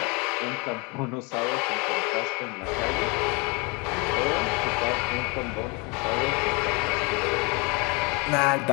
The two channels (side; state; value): right; quieter; 29.3 dB